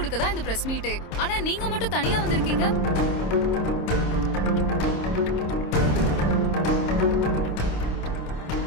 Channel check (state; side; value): late; right; 26 ms